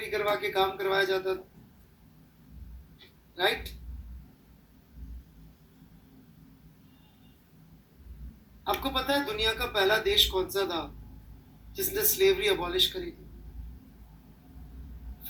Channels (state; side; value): identical; both; correlation 1.00